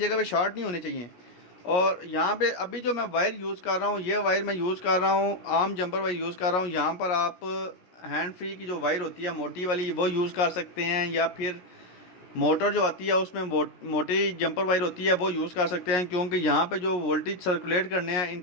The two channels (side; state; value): right; late; 17 ms